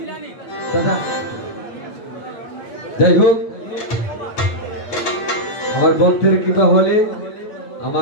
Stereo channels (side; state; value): right; late; 9.1 ms